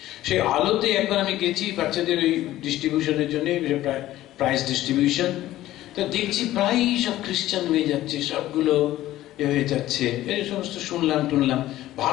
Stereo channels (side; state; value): right; quieter; 14.8 dB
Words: সেই আলোতে একবার আমি গেছি বাচ্চাদের ওই ডিস্ট্রিবিউশনের জন্য, প্রাইজ ডিস্ট্রিবিউশন। তো দেখছি প্রায় সব খ্রিস্টান হয়ে যাচ্ছে, সবগুলো হয়ে যাচ্ছে, এই সমস্ত শুনলাম টুনলাম